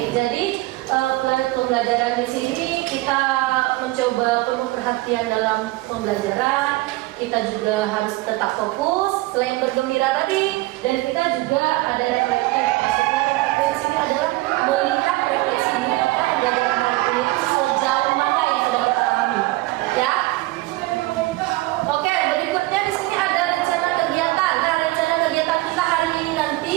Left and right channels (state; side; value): quieter; left; 19.9 dB